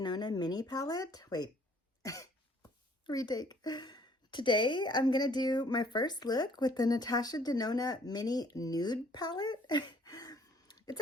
Mini palette. Wait, retake. Today I'm going to do my first look with the Natasha Denona Mini Nude palette.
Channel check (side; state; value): both; normal; correlation 0.60